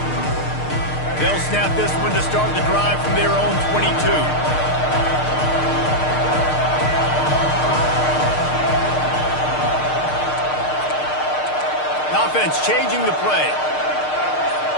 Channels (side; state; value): right; late; 6.6 ms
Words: They'll snap this one to start the drive from their own 22. Offense changing the play.